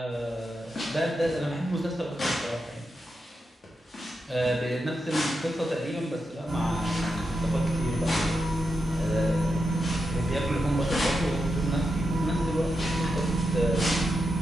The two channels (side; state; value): both; normal; correlation 0.87